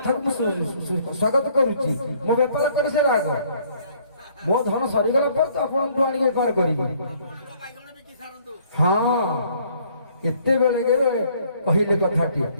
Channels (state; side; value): inverted; both; correlation -0.62